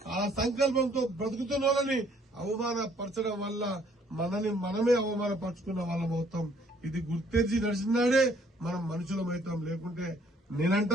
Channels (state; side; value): normal; both; correlation 0.63